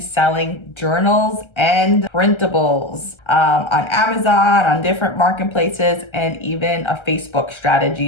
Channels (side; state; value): right; late; 1.3 ms